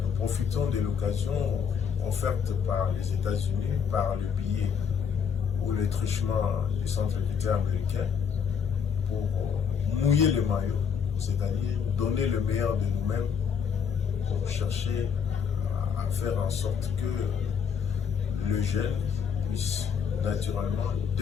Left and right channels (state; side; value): quieter; right; 6.9 dB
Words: Nous profitons de l'occasion offerte par les États-Unis, par le billet ou le truchement du Centre culturel américain pour mouiller le maillot, c'est-à-dire donner le meilleur de nous-mêmes pour chercher à faire en sorte que le jeune puisse naturellement